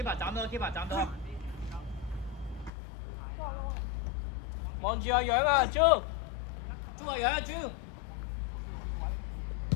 斬到。望住阿楊啊，朱阿楊啊，朱。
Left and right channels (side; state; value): right; drops out; at 2.7 s